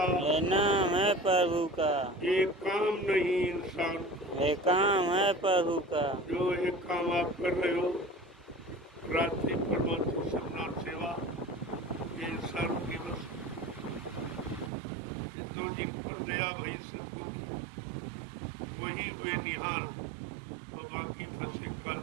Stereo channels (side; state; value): left; drops out; at 14.7 s